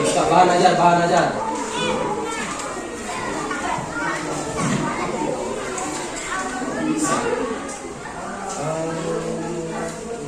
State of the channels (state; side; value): identical; both; correlation 1.00